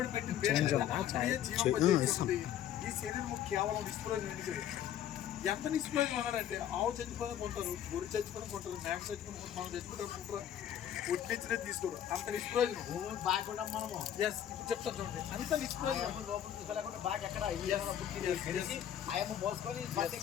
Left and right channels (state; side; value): quieter; right; 10.4 dB